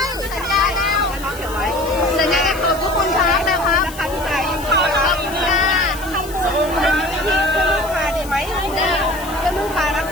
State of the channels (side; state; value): left; noise; hiss, 15 dB below the sound